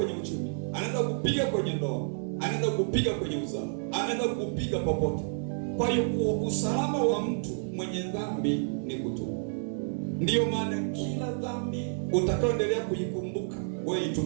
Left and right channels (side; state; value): left; silent; 58 dB below the other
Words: uchumi, anaweza kukupiga kwenye ndoa, anaweza kukupiga kwenye uzao, anaweza kukupiga popote. Kwa hiyo usalama wa mtu mwenye dhambi ni kutubu. Ndiyo maana kila dhambi utakayoendelea kuikumbuka, wewe